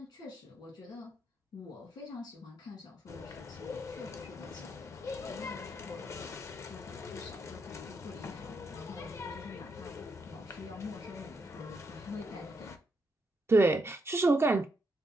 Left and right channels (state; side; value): normal; both; correlation 0.80